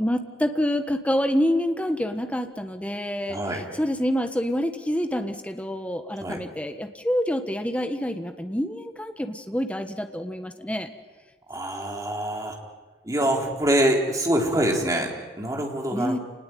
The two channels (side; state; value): both; normal; correlation 0.77